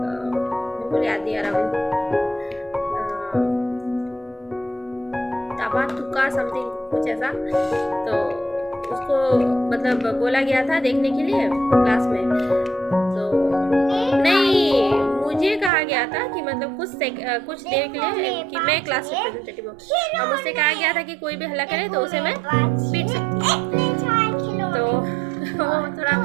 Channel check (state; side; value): drops out; left; at 15.7 s